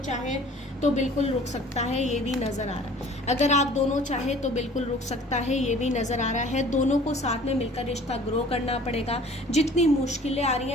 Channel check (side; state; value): both; normal; correlation 0.49